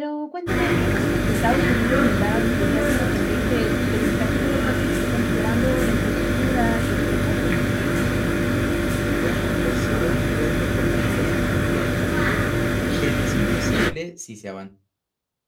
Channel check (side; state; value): both; identical; correlation 1.00